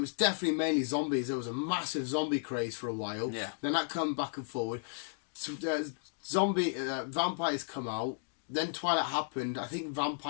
was definitely mainly zombies. There was a massive zombie craze for a while. Yeah. Then that come back and forward. So, vampires come out. Then Twilight happened. I think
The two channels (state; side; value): silent; right; digital silence